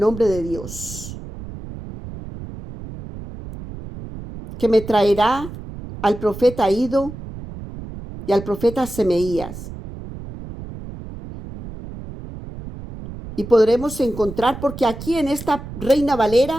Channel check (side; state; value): right; noise; rumble, 12 dB below the sound